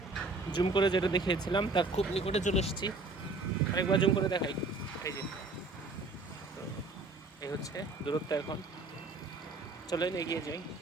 জুম করে যেটা দেখিয়েছিলাম তার খুব নিকটে চলে এসেছি। আরেকবার জুম করে দেখাই। এই যে, এই হচ্ছে দূরত্ব। এখন চলেন এগিয়ে যাই।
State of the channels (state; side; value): quieter; left; 3.4 dB